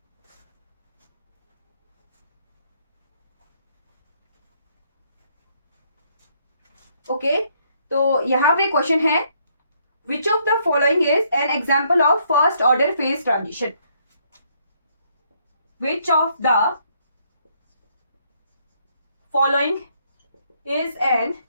ओके तो यहाँ पे क्वेश्चन है, which of the following is an example of first order phase transition? Which of the following is an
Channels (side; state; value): both; inverted; correlation -0.70